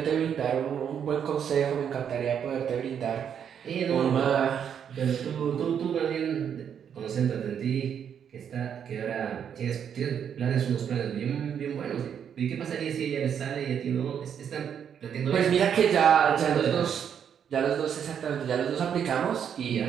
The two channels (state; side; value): quieter; left; 8.2 dB